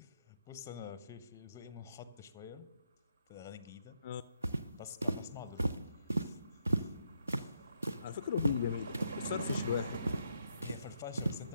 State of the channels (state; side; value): inverted; both; correlation -0.77